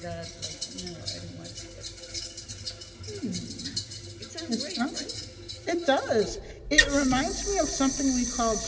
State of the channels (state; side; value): identical; both; correlation 1.00